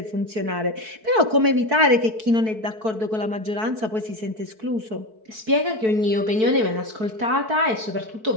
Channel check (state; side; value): late; left; 4.6 ms